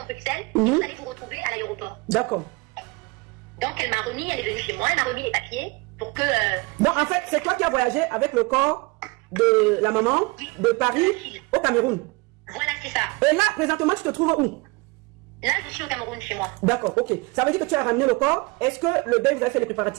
Bruxelles et vous allez vous retrouver à l'aéroport. D'accord. Donc elle m'a remis, elle est venue chez moi, elle m'a remis les papiers pour que... Donc en fait, c'est toi qui as voyagé avec le corps de la maman de Paris au Cameroun. Voilà, c'est ça. Et là, présentement, tu te trouves où? Là, je suis au Cameroun chez moi. D'accord, ok. Ça veut dire que tu as ramené le corps. Est-ce que le deuil, vous avez fait les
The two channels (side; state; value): left; quieter; 25.7 dB